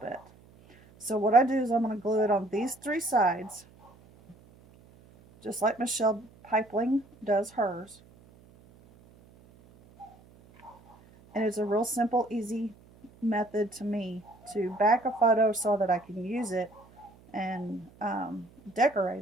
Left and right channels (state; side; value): noise; right; hum, 26 dB below the sound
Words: So what I do is I'm going to glue it on these 3 sides, just like Michelle Pipeling does hers. And it's a real simple, easy method to me to back a photo so that I can use it and